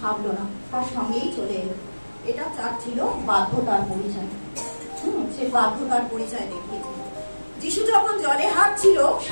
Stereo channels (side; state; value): both; inverted; correlation -1.00